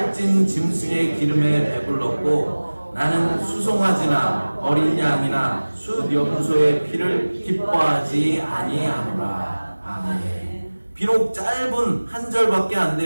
짐승의 기름에 배불렀고 나는 수송아지나 어린 양이나 숫염소의 피를 기뻐하지 아니하노라. 아멘. 비록 짧은 한 절밖에 안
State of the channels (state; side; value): inverted; both; correlation -1.00